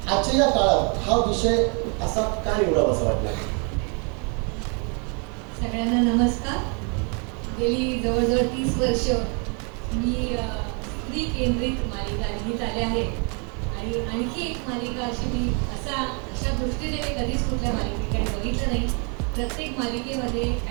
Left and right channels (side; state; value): left; quieter; 36.2 dB